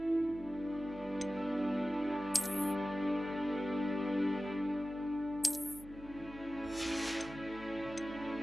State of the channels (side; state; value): right; noise; hum, 18 dB below the sound